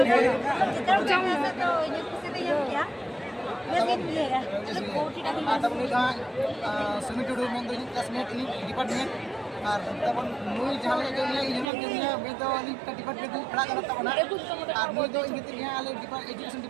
जितना जाऊंगा तो ये किसी ने क्या ये दिन मिलेगा तो कोटी का तब नहीं था समिटुडू में तो क्लासमेट इन डिपार्टमेंट और तब मुई जहां के लिए यूनियन के लिए मैं तो वाली डिपार्टमेंट में खड़ा करता हूं ना और मुई तो इनके लिए आले एजुकेशन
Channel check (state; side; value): drops out; left; at 11.7 s